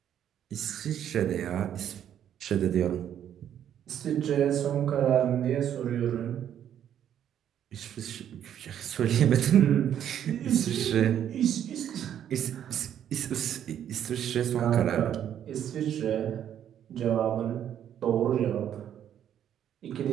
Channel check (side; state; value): left; quieter; 10.0 dB